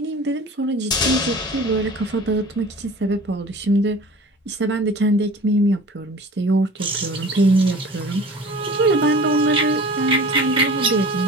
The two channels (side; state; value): both; normal; correlation 0.41